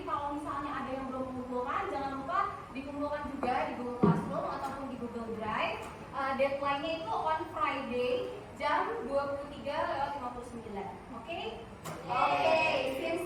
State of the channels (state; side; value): identical; both; correlation 1.00